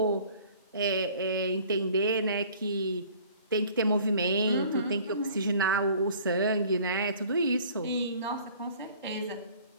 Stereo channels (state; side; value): inverted; both; correlation -0.51